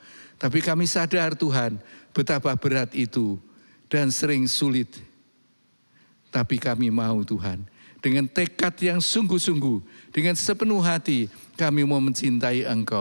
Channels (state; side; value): inverted; both; correlation -1.00